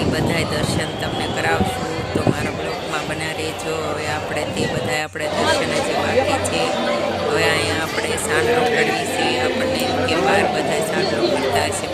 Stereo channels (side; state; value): both; identical; correlation 1.00